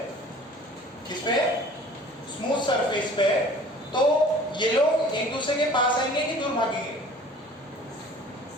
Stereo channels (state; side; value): normal; both; correlation 0.48